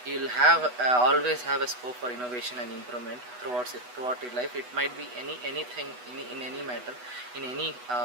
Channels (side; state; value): left; late; 8.1 ms